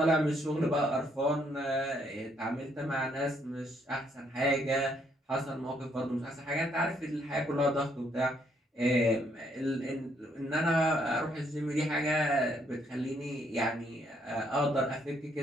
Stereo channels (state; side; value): normal; both; correlation 0.71